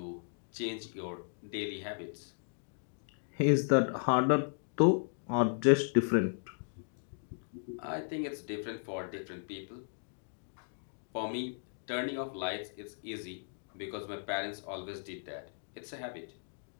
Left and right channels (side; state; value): right; silent; digital silence